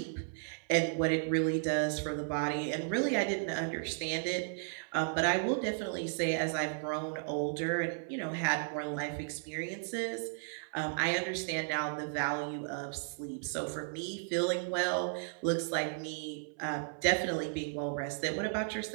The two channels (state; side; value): silent; left; 55 dB below the other